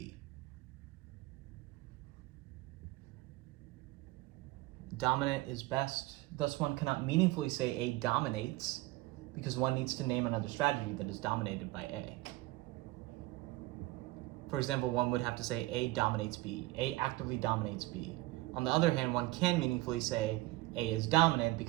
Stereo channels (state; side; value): quieter; left; 19.8 dB